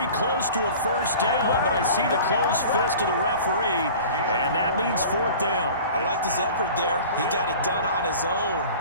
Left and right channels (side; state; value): both; inverted; correlation -0.41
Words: close to a first down, but I see the closed fist of the referee, and that means 4th down. I liked his effort there. He got it done on his own,